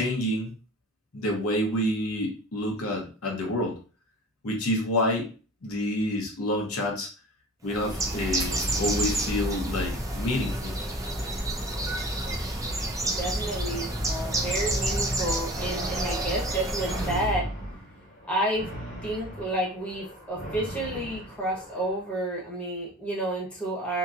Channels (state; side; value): normal; both; correlation 0.41